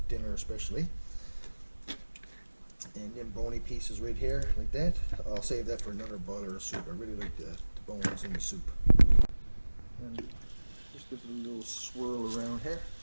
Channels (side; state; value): both; inverted; correlation -1.00